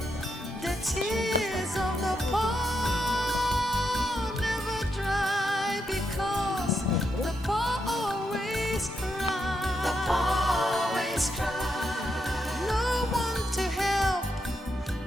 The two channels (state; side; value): normal; both; correlation 0.82